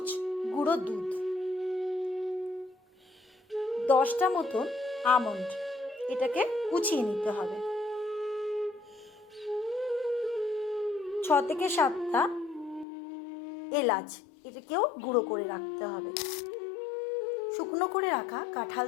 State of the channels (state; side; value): drops out; right; at 12.9 s